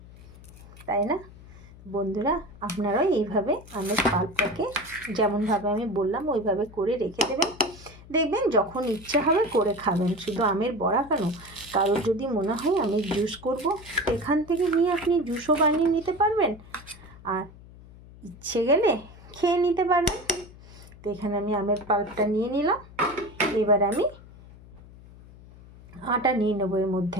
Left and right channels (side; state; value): left; noise; hum, 20 dB below the sound